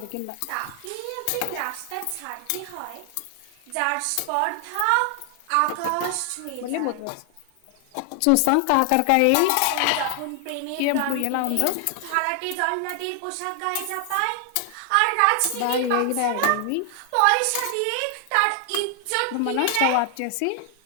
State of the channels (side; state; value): both; different; correlation 0.00